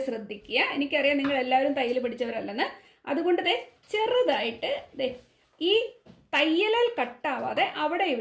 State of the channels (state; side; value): identical; both; correlation 1.00